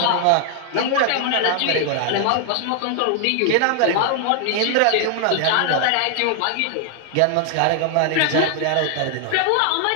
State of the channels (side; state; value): both; different; correlation 0.00